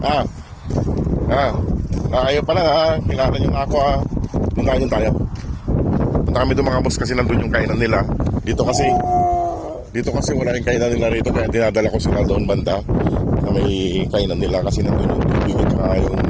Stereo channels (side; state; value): both; identical; correlation 1.00